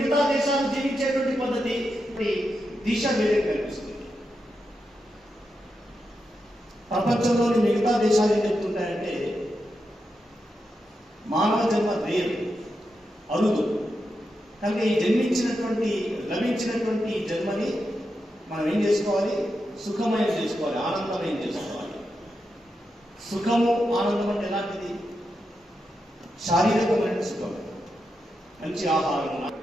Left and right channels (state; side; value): normal; both; correlation 0.87